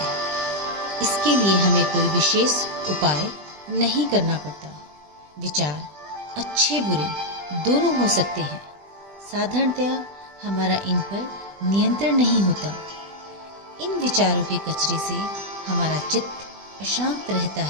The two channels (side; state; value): left; late; 20 ms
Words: इसके लिए हमें कोई विशेष उपाय नहीं करना पड़ता। विचार अच्छे बुरे दोनों हो सकते हैं। साधारणतया हमारा इन पर नियंत्रण नहीं होता। इन विचारों के कचरे से हमारा चित्त अशांत रहता